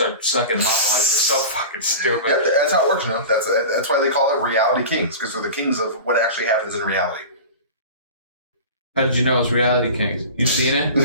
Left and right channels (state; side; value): inverted; both; correlation -0.33